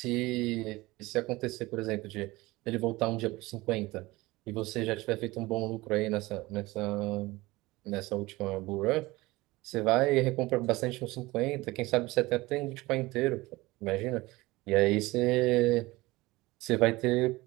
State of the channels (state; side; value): quieter; left; 20.4 dB